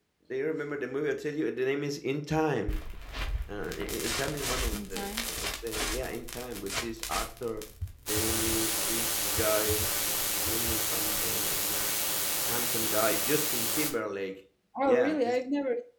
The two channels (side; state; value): both; identical; correlation 1.00